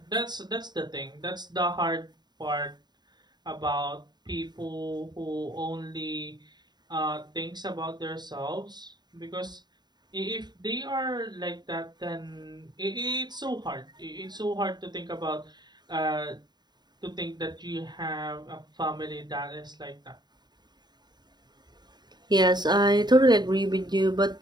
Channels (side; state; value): left; late; 0.20 ms